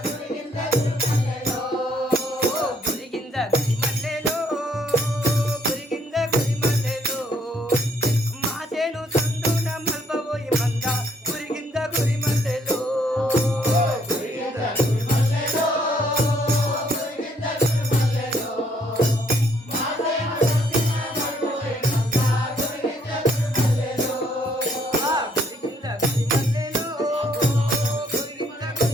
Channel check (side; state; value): both; normal; correlation 0.68